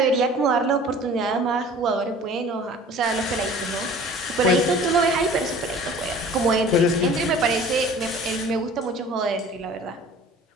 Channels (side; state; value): both; normal; correlation 0.46